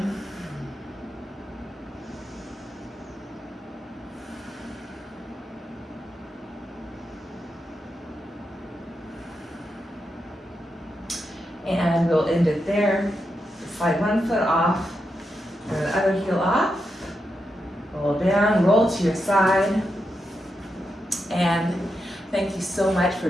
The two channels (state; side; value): normal; both; correlation 0.86